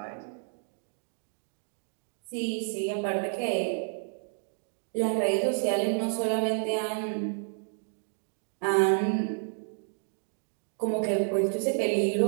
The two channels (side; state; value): left; silent; digital silence